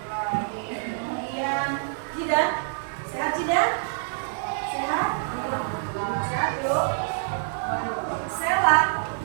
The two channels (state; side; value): silent; left; digital silence